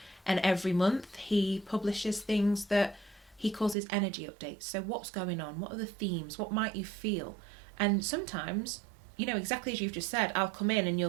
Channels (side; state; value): left; drops out; at 3.8 s